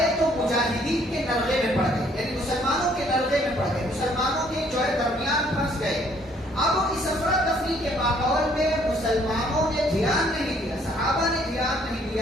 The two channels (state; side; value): normal; both; correlation 0.63